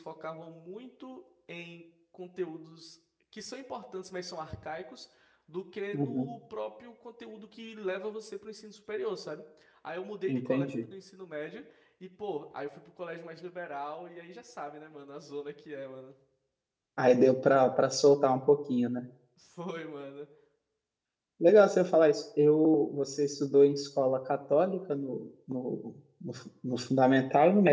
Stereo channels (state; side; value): identical; both; correlation 1.00